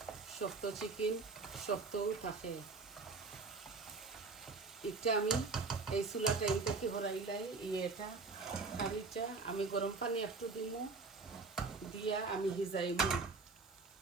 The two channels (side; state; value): left; quieter; 4.2 dB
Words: শক্ত চিকেন শক্তও থাকে। এটা আমি এই চুলাটা এইটা কি হরাইলাই, এটা কারিটা আমি গরম পানি একটু দিমু, দিয়া আমি হিজাইমু।